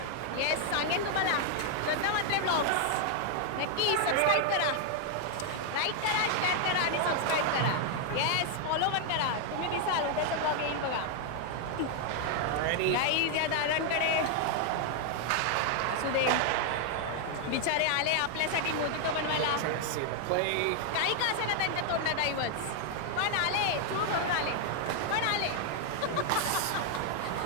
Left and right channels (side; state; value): both; different; correlation 0.00